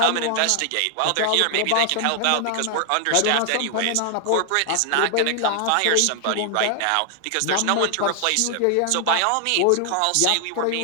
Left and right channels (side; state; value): both; different; correlation 0.00